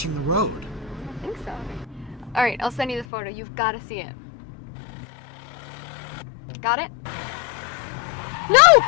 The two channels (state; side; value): drops out; right; at 3.1 s